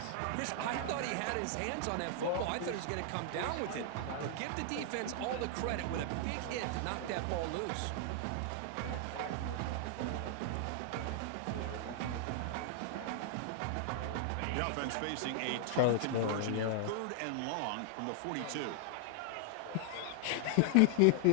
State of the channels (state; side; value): different; both; correlation 0.00